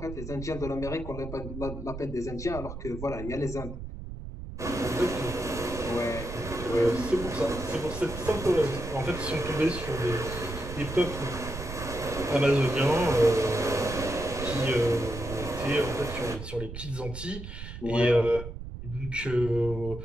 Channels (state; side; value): noise; right; rumble, 9 dB below the sound